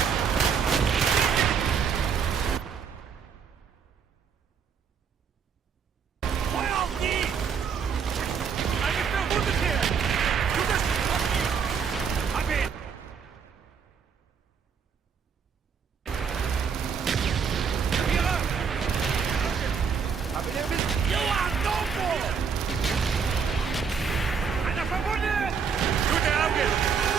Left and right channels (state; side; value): quieter; left; 6.5 dB